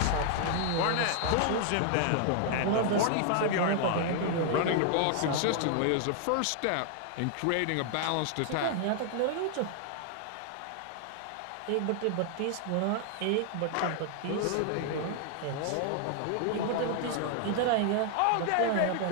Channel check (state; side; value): different; both; correlation 0.00